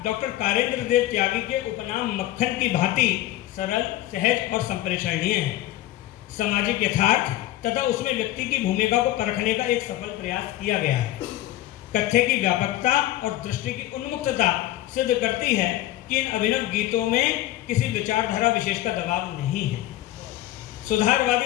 डॉक्टर कारेंद्र देव त्यागी के उपनाम मक्खन की भांति सरल, सहज और संप्रेषणीय है। सामाजिक यथार्थ तथा उसमें व्यक्ति की भूमिका को परखने का एक सफल प्रयास किया गया है। कथ्य की व्यापकता और दृष्टि की उन्मुक्तता सिद्ध करती है कि इन अभिनव गीतों में किसी विचारधारा विशेष का दबाव नहीं है।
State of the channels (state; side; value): quieter; right; 14.8 dB